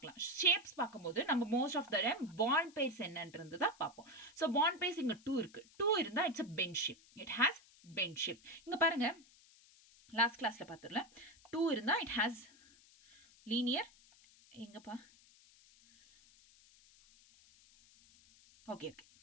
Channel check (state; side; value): noise; left; hiss, 26 dB below the sound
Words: ஷேப்ஸ் பார்க்கும்போது நம்ம most of the time bond pairs என்னன்றது தான் பார்ப்போம். ஸோ பாண்ட் பேர்ஸ் இங்கே 2 இருக்கு. 2 இருந்தால் it's a bent shape. It has bent shape. இங்கே பாருங்க, லாஸ்ட் கிளாஸ்ல பார்த்துடல. 2 இருந்தால் இட் ஹேஸ் லீனியர். எங்கப்பா? Okay okay,